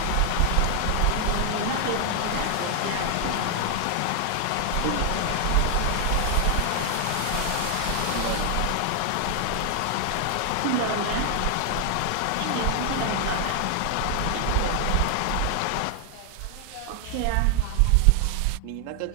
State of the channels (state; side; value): different; both; correlation 0.00